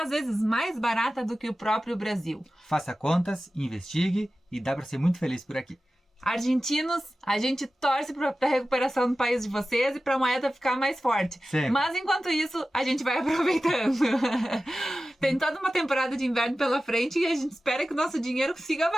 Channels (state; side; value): normal; both; correlation 0.95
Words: às vezes mais barata do que o próprio Brasil. Faça contas, investigue e dá pra ser muito feliz por aqui. Argentinos, a gente torce para a recuperação do país de vocês e para a moeda ficar mais forte. Sempre. Mas enquanto isso, a gente vai aproveitando. Tem toda uma temporada de inverno pela frente e a gente espera que o nosso dinheiro siga